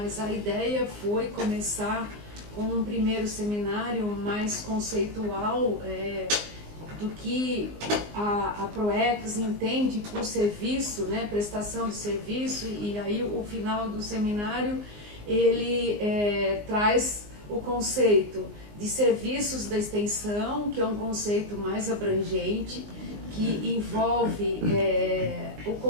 a ideia foi começar com um primeiro seminário mais conceitual do que a PROEX entende por serviço, né, prestação de serviço, e aí o final do seminário ele traz o conceito de serviços da extensão, que é um conceito mais abrangente, que envolve o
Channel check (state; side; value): late; left; 19 ms